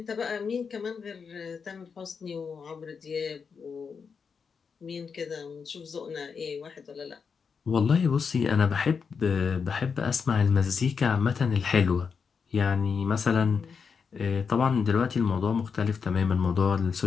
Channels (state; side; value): quieter; right; 5.8 dB